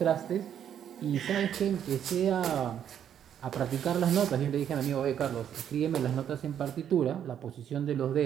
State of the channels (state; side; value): quieter; left; 9.4 dB